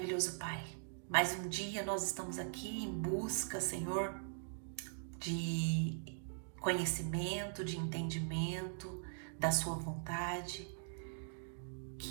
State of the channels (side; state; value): left; silent; digital silence